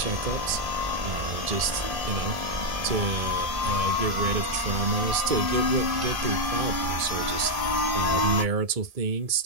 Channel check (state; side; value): late; left; 1.7 ms